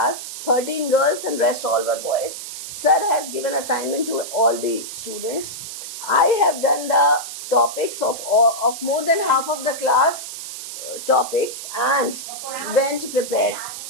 13 girls and rest all were boys. Sir has given assignment to all the students. I have done the topics of more than half of the class topics and went prepared.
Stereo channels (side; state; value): right; noise; hiss, 9 dB below the sound